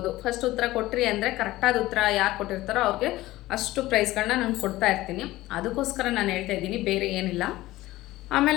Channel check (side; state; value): right; quieter; 17.2 dB